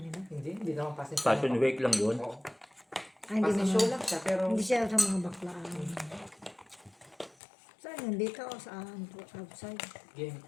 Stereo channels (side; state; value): right; drops out; at 7.4 s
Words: Hindi naman pasin. Fashion week lang yun. Oo. Ay, hindi Pasin naman. show lang siya, pero Hindi siya sa mga baklaan. Saan yun? Dito o saan? Outside? game.